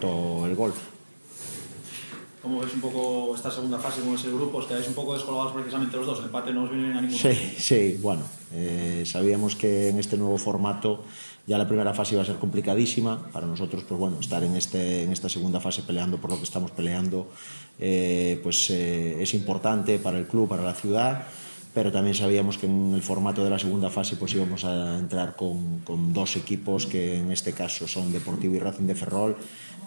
el gol. ¿Cómo ves un poco esta segunda fase con ese grupo? Os quedáis un poco descolgados precisamente los dos, el empate no os viene bien a ninguno. Sí, bueno, sabíamos que en este nuevo formato ya la primera fase iba a ser complicadísima para nosotros, pues bueno, estar en esta segunda fase peleando por lo que estamos peleando es importante para el club, para la ciudad, pero también sabíamos que en el formato de la segunda fase pues íbamos a entrar con dos equipos que en este caso son Deportivo y Racing de Ferrol,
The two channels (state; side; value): inverted; both; correlation -1.00